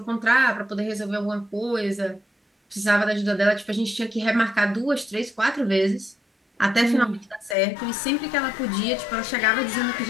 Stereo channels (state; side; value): drops out; right; at 7.6 s